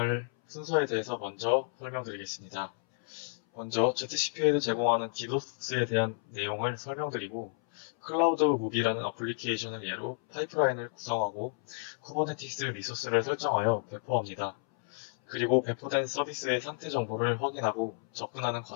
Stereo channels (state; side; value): silent; right; 57 dB below the other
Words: 순서에 대해서 먼저 설명드리겠습니다. 먼저 ZCP에도 제공하는 디도스에 대한 내용을 설명드리고 클라우드 무비라는 어플리케이션을 예로 파이프라인을 구성하고 쿠버네티스 리소스를 설정하여 배포합니다. 그리고 배포된 서비스의 상태 정보를 확인하고 접근하는